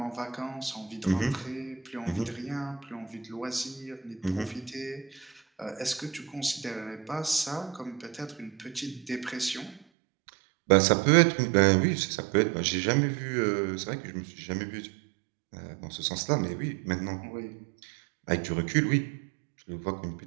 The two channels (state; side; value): drops out; left; at 9.8 s